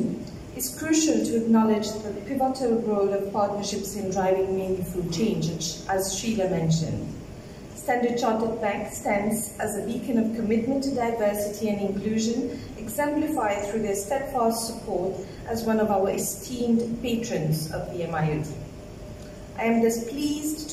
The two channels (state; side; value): identical; both; correlation 1.00